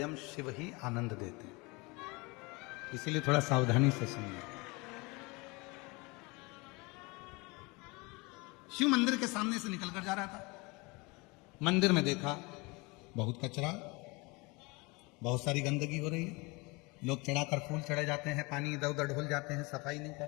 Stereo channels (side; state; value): right; quieter; 26.2 dB